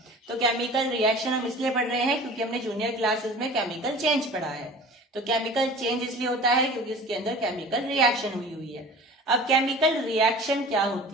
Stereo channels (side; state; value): both; normal; correlation 0.41